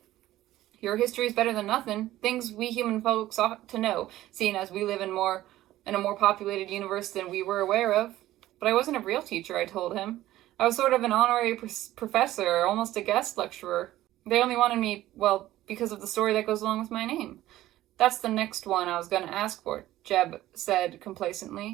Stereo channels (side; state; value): left; quieter; 15.0 dB